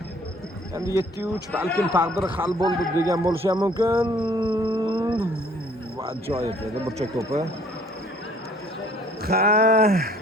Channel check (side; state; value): both; normal; correlation 0.57